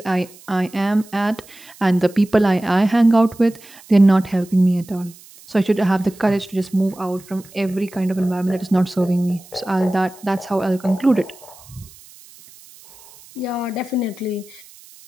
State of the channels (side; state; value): right; noise; hiss, 23 dB below the sound